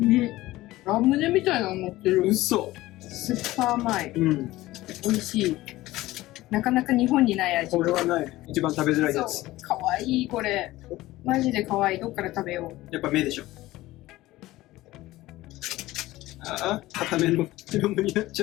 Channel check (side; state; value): right; quieter; 17.4 dB